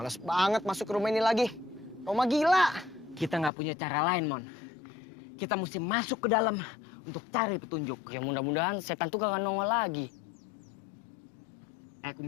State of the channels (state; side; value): drops out; right; at 3.5 s